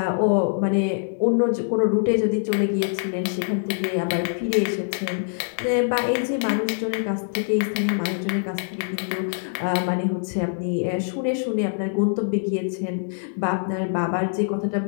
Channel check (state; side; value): silent; right; digital silence